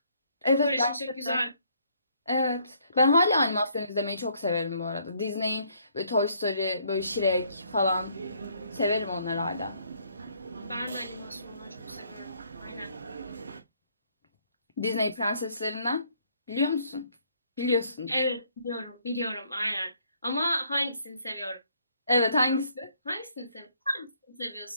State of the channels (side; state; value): both; inverted; correlation -0.66